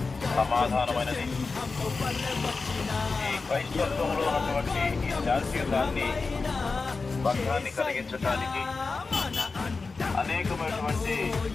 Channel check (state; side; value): quieter; right; 4.2 dB